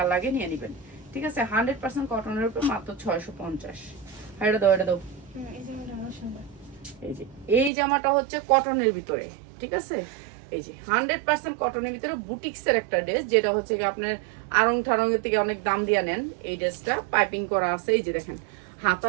লাগে নিয়ে নেবেন। ঠিক আছে, 100% কটনের উপর মাত্র 650। এটা দাও, এটা দাও। এই যে এই জামাটা হচ্ছে কটনের ভিতরে। ঠিক আছে, এই যে 100% কটনের ভিতরে বুটিক্সের একটা ড্রেস, যেটা হচ্ছে কি আপনার আড়ং ঠাড়ঙের থেকে অনেক দাম দিয়ে নেন। এই ড্রেসটা পাইপিং করা আছে, এই যে দেখেন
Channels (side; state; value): left; drops out; at 7.7 s